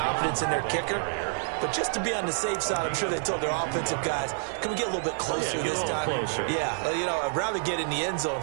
in their kicker. But just to be on the safe side, I'm sure they told their offensive guys, can we get a little bit closer this time? Closer. Yeah, you know, I'd rather get in the end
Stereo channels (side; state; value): left; silent; 59 dB below the other